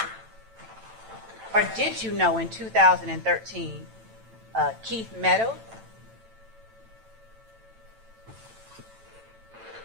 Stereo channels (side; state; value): left; late; 9.0 ms